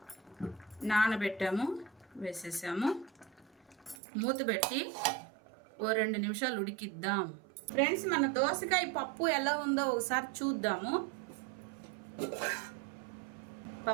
నానబెట్టాము, వేసేసాము. మూత పెట్టి 2 నిమిషాలు ఉడికిద్దాం. ఫ్రెండ్స్ మన దోసకాయ పప్పు ఎలా ఉందో ఒకసారి చూద్దాము.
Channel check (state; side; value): drops out; left; at 4.0 s